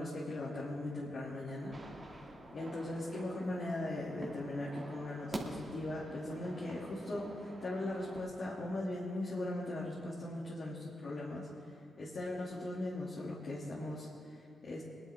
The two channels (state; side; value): normal; both; correlation 0.86